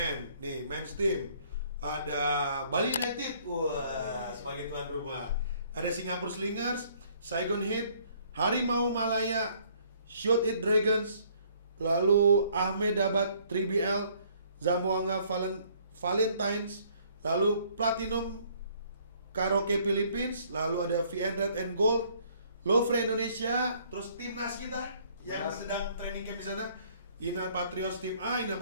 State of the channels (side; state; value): both; inverted; correlation -0.61